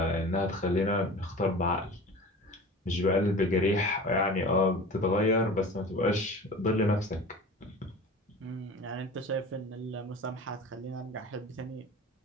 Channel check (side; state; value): both; normal; correlation 0.37